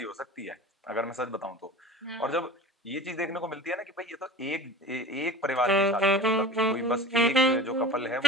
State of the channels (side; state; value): both; normal; correlation 0.36